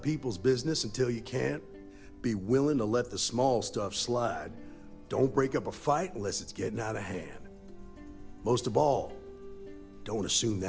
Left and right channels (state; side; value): identical; both; correlation 1.00